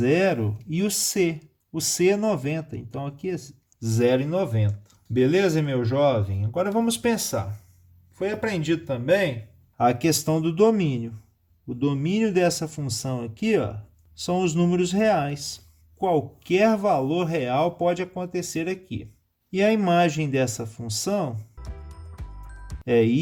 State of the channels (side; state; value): both; identical; correlation 1.00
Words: e o C. O C é 90, então aqui é 0 e 90. Beleza, meu jovem? Agora vamos pensar. Foi aprendido também a questão do domínio. O domínio dessa função aqui, ó, são os números reais. Qualquer valor real pode acontecer aqui. E a imagem dessa função é